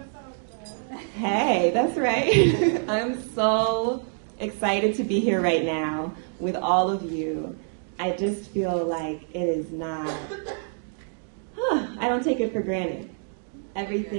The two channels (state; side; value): silent; left; 61 dB below the other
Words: Hey, that's right. I'm so excited to be here right now with all of you. I just feel like it is not, I don't take it for granted.